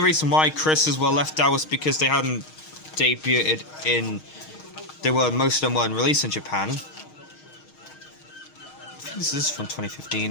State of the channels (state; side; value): late; right; 6.4 ms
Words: reason why Chris's were left out was because they hadn't debuted in. Most of them weren't released in Japan. I think this is from